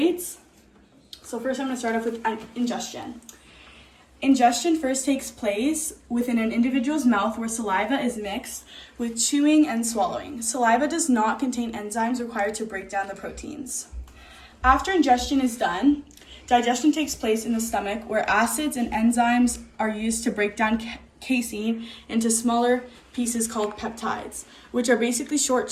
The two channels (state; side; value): identical; both; correlation 1.00